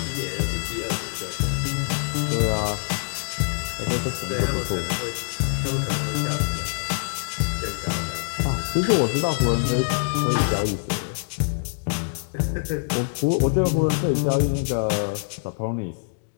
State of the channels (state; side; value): silent; right; digital silence